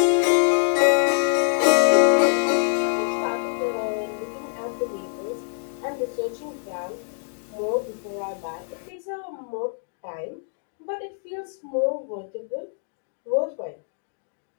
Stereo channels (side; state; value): right; silent; 62 dB below the other